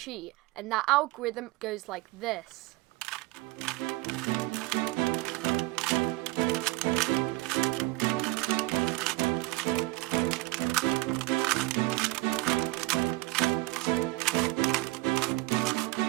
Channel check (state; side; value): quieter; left; 20.5 dB